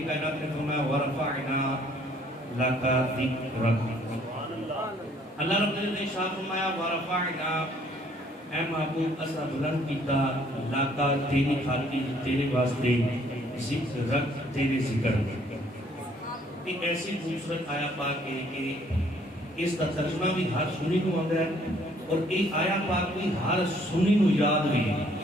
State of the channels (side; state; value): both; normal; correlation 0.62